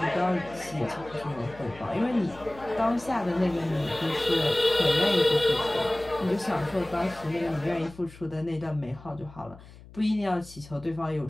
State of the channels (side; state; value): left; noise; hum, 20 dB below the sound